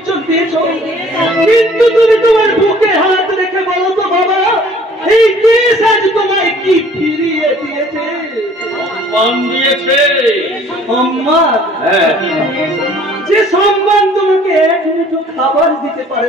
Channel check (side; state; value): both; normal; correlation 0.54